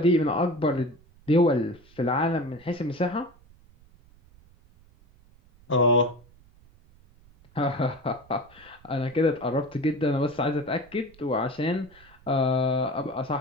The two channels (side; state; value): right; noise; rumble, 27 dB below the sound